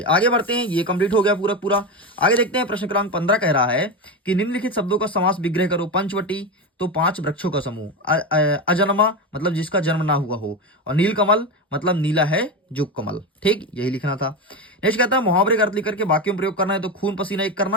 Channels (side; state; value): both; normal; correlation 0.17